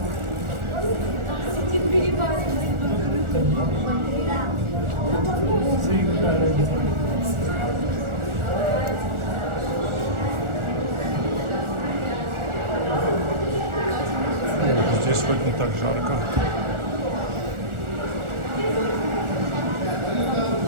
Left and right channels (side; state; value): left; late; 1.4 ms